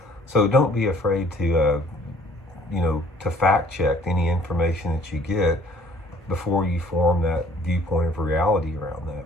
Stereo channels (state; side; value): normal; both; correlation 0.57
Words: So don't be afraid to fact check any information that you get before you form that viewpoint of reality around that,